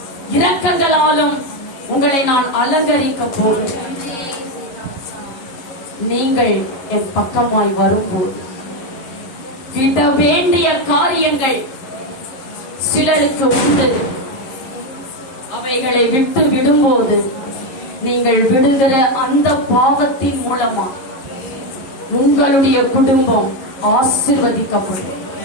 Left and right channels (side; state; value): right; late; 11 ms